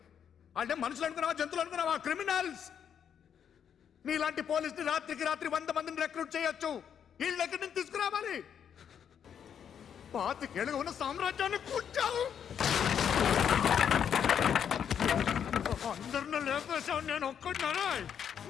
వాళ్ళే మనుషులు అనుకున్నావా జంతువులు అనుకున్నావా క్రిమినల్స్ నీలాంటి పోలీసుని రాత్రికి రాత్రి 100 మందిని రిక్రూట్ చేయొచ్చు వీళ్ళ దగ్గర నుంచి తీసుకురావాలి పాతికేళ్ళగా ఉన్న సామ్రాజ్యాన్ని కూర్చావు అందరిని లేపేశావు నేను ఒక్కడినారా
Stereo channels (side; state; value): right; quieter; 8.3 dB